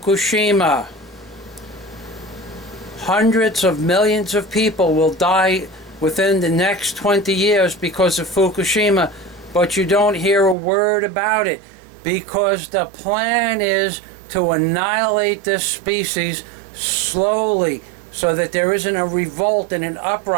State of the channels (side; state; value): left; drops out; at 10.6 s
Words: Hundreds of millions of people will die within the next 20 years because of Fukushima, but you don't hear a word about it because the plan is to annihilate this species slowly so that there isn't a revolt and an